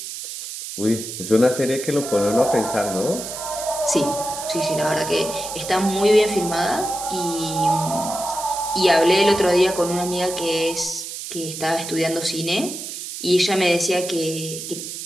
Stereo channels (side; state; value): right; noise; hiss, 8 dB below the sound